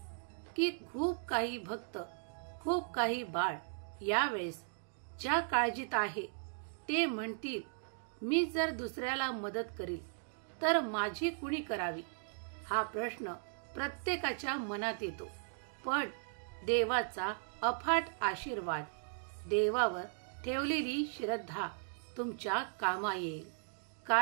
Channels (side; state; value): left; silent; digital silence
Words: की खूप काही भक्त, खूप काही बाळ यावेळेस ज्या काळजीत आहे ते म्हणतील मी जर दुसऱ्याला मदत करील तर माझी कुणी करावी. हा प्रश्न प्रत्येकाच्या मनात येतो. पण देवाचा अफाट आशीर्वाद, देवावर ठेवलेली श्रद्धा तुमच्या कामा येईल.